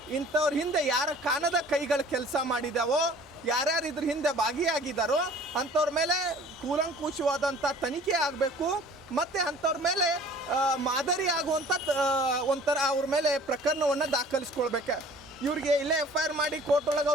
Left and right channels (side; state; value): both; normal; correlation 0.50